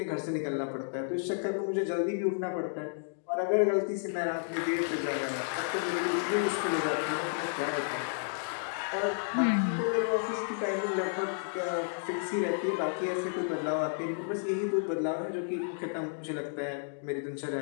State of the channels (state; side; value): silent; right; digital silence